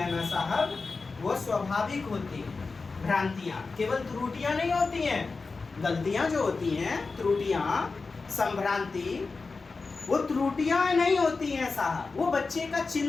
ना साहब, वो स्वाभाविक होती हैं। भ्रांतियां केवल त्रुटियां नहीं होती हैं, गलतियां जो होती हैं, त्रुटियां, संभ्रांति, वो त्रुटियां नहीं होती हैं साहब, वो बच्चे का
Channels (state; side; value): quieter; right; 4.1 dB